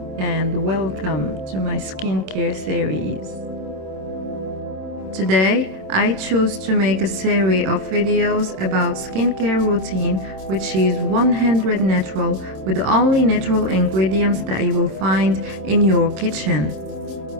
and welcome to my skincare series. Today I choose to make a series of videos about skincare routine which is 100 natural with only natural ingredients that you will find in your kitchen.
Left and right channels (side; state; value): left; late; 27 ms